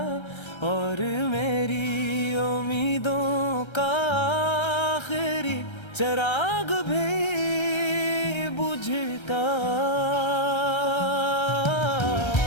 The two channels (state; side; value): late; right; 1.3 ms